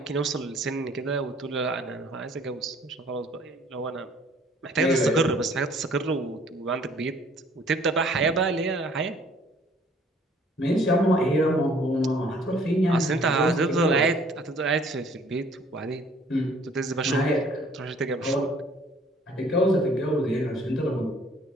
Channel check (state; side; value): normal; both; correlation 0.58